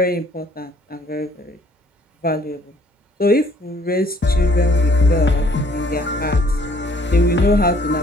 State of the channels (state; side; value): normal; both; correlation 0.60